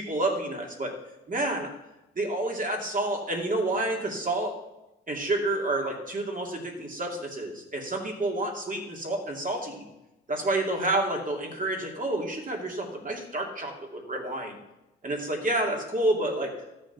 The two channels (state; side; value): normal; both; correlation 0.34